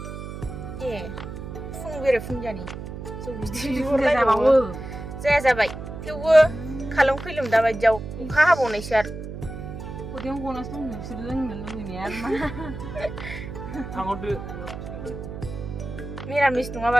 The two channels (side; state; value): right; noise; hum, 9 dB below the sound